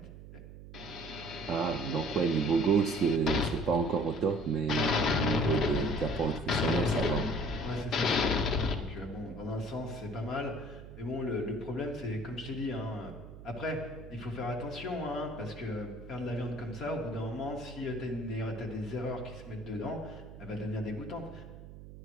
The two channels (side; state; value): right; noise; hum, 15 dB below the sound